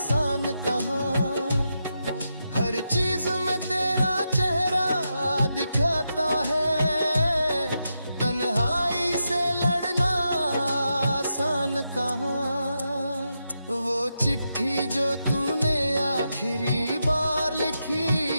कहाँ। हर चीज में तेरा चेहरा दिखाता है, तन्हाई से लड़ना आसान कहाँ। वो चिट्ठी जो तूने आखिरी बार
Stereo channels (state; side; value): inverted; both; correlation -0.86